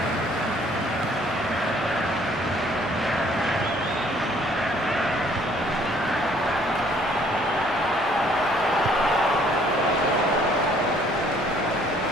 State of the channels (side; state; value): both; normal; correlation 0.60